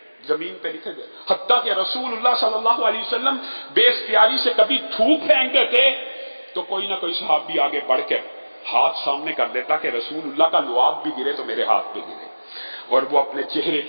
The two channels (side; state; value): both; inverted; correlation -1.00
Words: زمین پہ نیچے گر، حتیٰ کہ رسول اللہ صلی اللہ علیہ وسلم بے اختیاری سے کبھی تھوک پھینکتے تھے تو کوئی نہ کوئی صحابی آگے بڑھ کر ہاتھ سامنے کر دیتا کہ رسول اللہ کا لعاب بھی گرے تو میرے ہاتھ پہ گرے، اور وہ اپنے چہرے